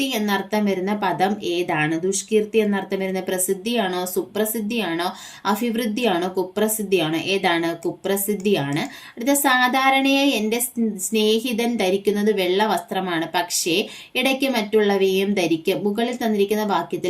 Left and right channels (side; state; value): both; identical; correlation 1.00